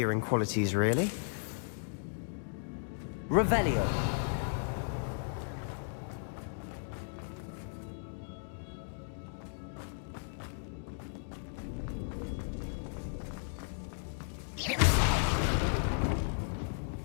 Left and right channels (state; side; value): silent; right; digital silence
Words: qualities, really. Revelio!